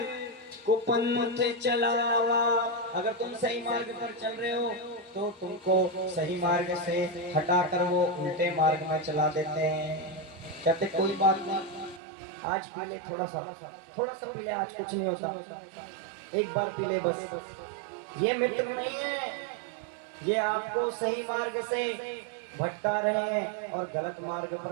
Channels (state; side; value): drops out; left; at 12.0 s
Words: कुपंथ चलावा। अगर तुम सही मार्ग पर चल रहे हो तो तुमको सही मार्ग से हटाकर वो उल्टे मार्ग में चला देते हैं। कहते कोई बात नहीं, आज पी ले, थोड़ा सा पी ले, आज कुछ नहीं होता, एक बार पी ले बस। ये मित्र नहीं है, ये आपको सही मार्ग से भटका रहे हैं और गलत मार्ग